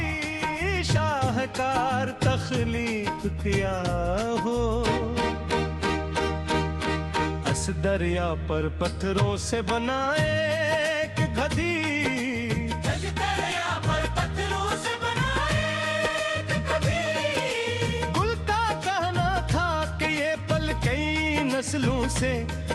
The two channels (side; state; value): both; identical; correlation 1.00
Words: शाहकार तख्लीक किया हो। इस दरिया पर पत्थरों से बनाए एक गधी, इस दरिया पर पत्थरों से बनाए एक गधी। गुल का कहना था कि ये पल कई नस्लों से